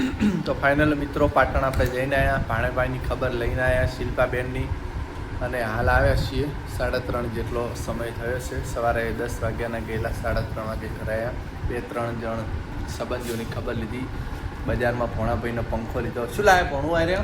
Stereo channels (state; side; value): identical; both; correlation 1.00